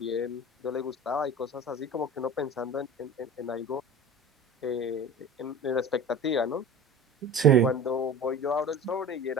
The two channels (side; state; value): both; normal; correlation 0.36